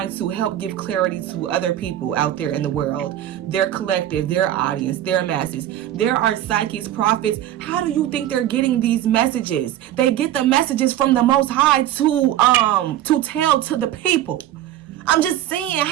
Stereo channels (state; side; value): quieter; left; 12.5 dB